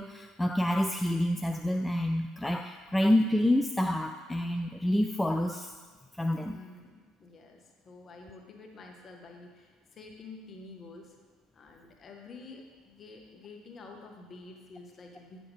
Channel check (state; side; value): normal; both; correlation 0.94